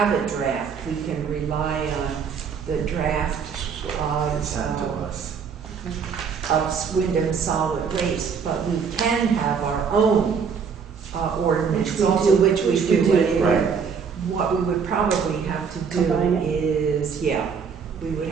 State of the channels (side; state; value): left; quieter; 6.3 dB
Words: a draft. We can rely on the draft Sent to us. of Wyndham Solid Waste, but we can have our own ordinance, Which we also do. which we do anyway. Right. what we would probably have to do Combine it. is, yeah, we would